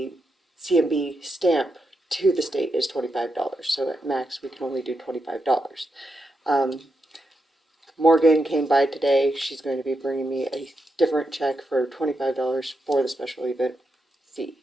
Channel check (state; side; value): normal; both; correlation 0.85